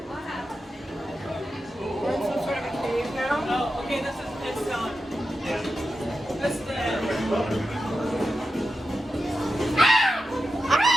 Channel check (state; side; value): normal; both; correlation 0.90